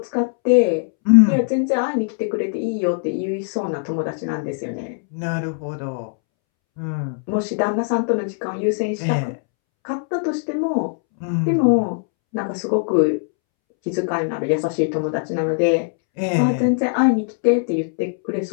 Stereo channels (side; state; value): right; silent; 65 dB below the other